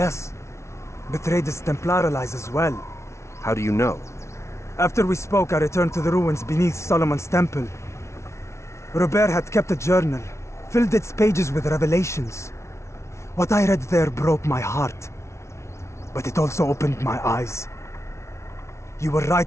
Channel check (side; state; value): right; late; 0.13 ms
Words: Betrayed his Templar allies as well. How do you know? After we spoke, I returned to the ruins beneath Solomon's temple. Robert had kept a journal, filled its pages with revelations. What I read there broke my heart. But it also opened my eyes. You were